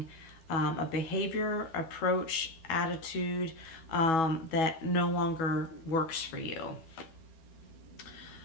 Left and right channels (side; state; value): right; late; 12 ms